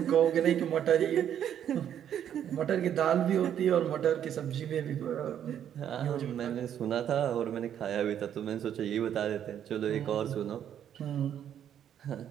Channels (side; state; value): left; quieter; 9.8 dB